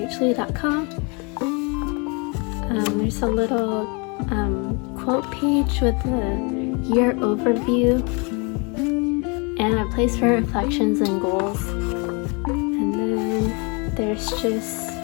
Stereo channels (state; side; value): quieter; right; 31.9 dB